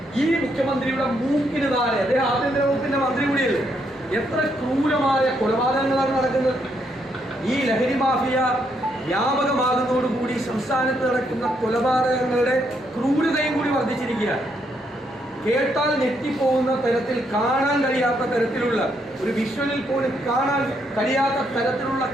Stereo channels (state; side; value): normal; both; correlation 0.76